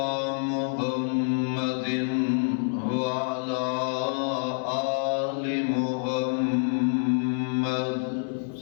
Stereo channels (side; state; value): right; silent; 60 dB below the other